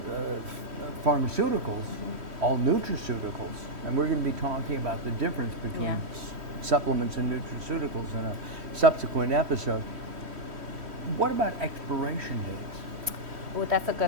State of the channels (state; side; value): late; left; 3.1 ms